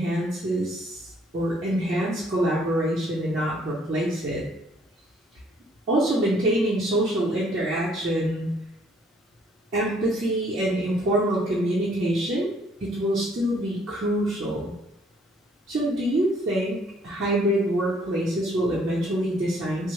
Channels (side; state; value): both; normal; correlation 0.63